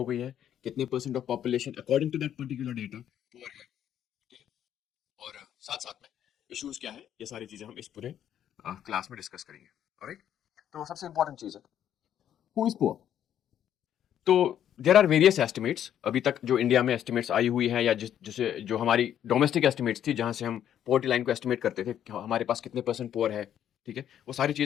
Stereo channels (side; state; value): right; quieter; 10.2 dB